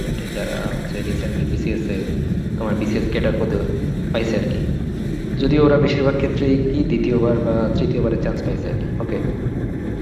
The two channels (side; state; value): both; identical; correlation 1.00